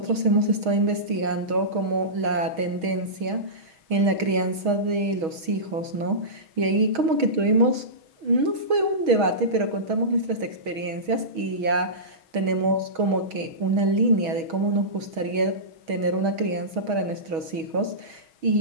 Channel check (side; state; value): left; late; 6.3 ms